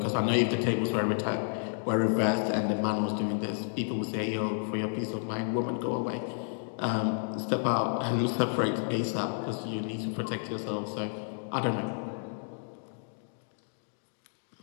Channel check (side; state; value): right; silent; digital silence